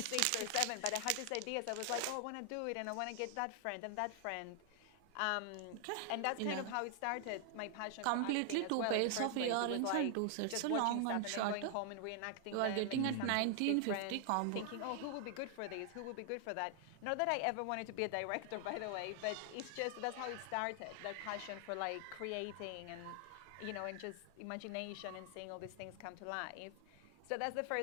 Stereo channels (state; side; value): different; both; correlation 0.00